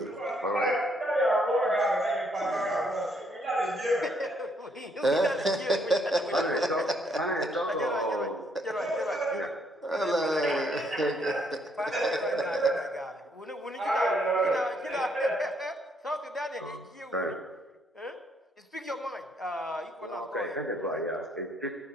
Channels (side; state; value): both; normal; correlation 0.70